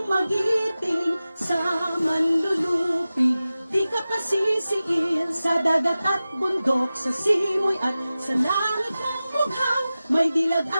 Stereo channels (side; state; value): both; inverted; correlation -0.95